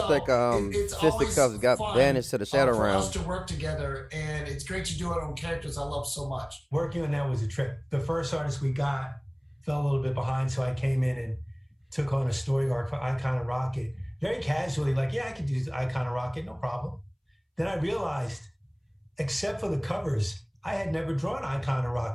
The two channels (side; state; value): both; identical; correlation 1.00